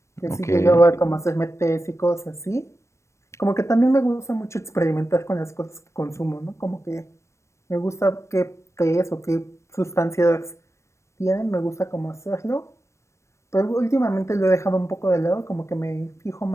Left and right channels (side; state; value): right; late; 0.14 ms